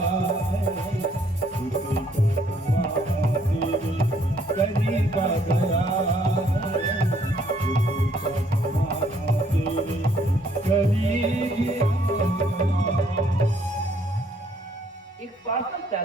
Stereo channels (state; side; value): normal; both; correlation 0.66